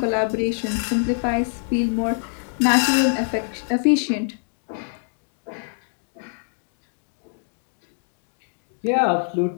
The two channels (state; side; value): silent; right; digital silence